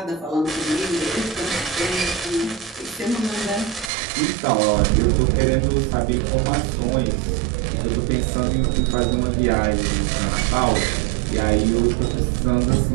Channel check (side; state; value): left; drops out; at 3.9 s